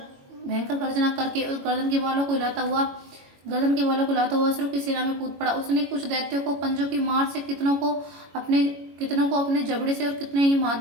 भयंकर गर्जना करके गर्दन के बालों को हिलाता हुआ असुरों की सेना में कूद पड़ा। उसने कुछ दैत्यों को पंजों की मार से, कितनों को अपने जबड़े से और कितने ही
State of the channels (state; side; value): late; left; 22 ms